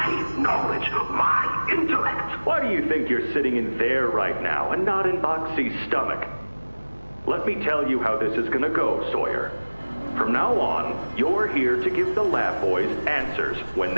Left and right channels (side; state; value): both; inverted; correlation -1.00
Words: knowledge, my intellect. Why do you think you're sitting in there right now and not in Boxy's stomach? Let me tell you how this is gonna go, Sawyer. From now on, you're here to give the lab boys answers when